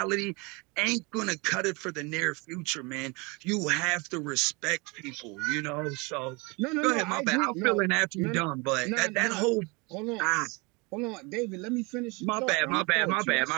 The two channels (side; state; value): left; quieter; 28.0 dB